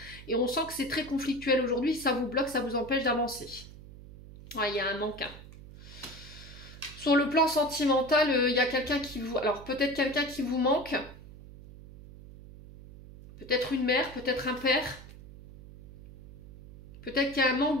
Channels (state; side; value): noise; right; hum, 17 dB below the sound